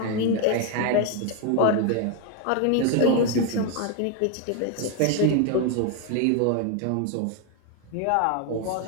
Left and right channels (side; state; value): both; different; correlation 0.01